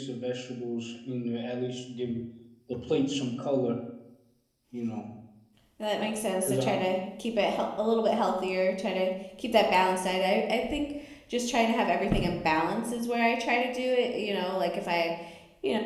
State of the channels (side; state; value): both; identical; correlation 1.00